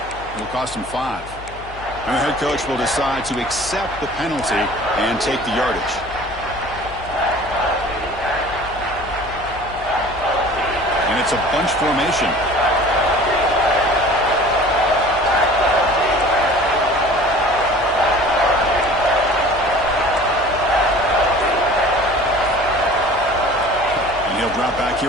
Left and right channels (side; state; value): left; noise; hum, 16 dB below the sound